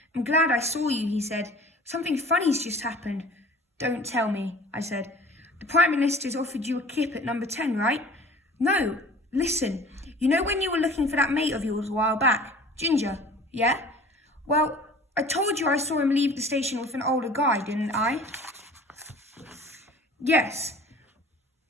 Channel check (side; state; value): both; normal; correlation 0.45